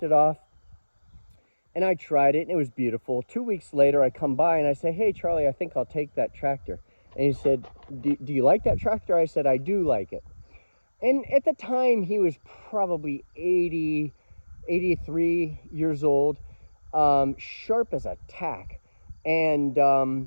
it off, and I tried it, and it was beautiful. 2 weeks later, I come by, and I say, hey, Charlie, I think I'll take that tractor. And he said, do you like that tractor? I said, I do like it. And at the time, he was probably 80, 83 years old, sharp as a tack. And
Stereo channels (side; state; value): both; inverted; correlation -1.00